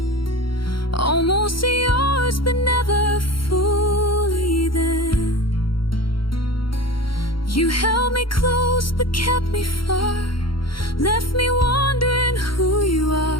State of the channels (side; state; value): right; late; 0.73 ms